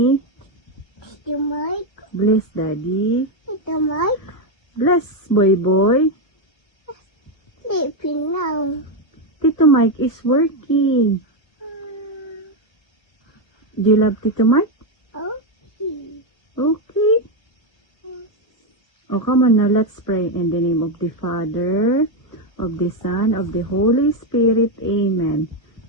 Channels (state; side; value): late; right; 1.4 ms